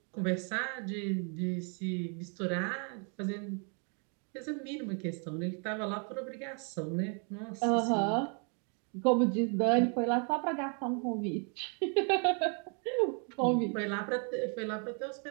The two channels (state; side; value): quieter; left; 38.9 dB